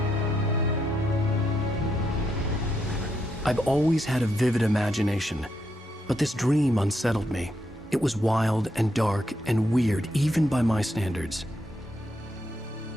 I've always had a vivid imagination, but this dream unsettled me. It was wild and dark and weird, even by my standards.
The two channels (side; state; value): both; normal; correlation 0.80